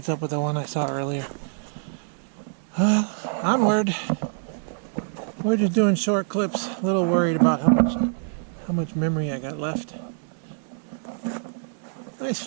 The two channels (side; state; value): left; silent; 61 dB below the other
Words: up with the one I saw earlier. Onward. We're just doing short clips. A little worried about how much memory I got left. Nice